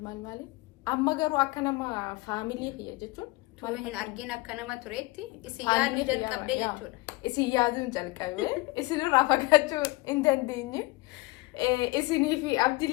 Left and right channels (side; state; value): right; quieter; 22.7 dB